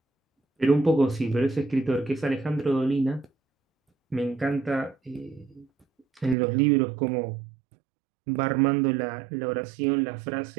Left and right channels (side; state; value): left; drops out; at 6.4 s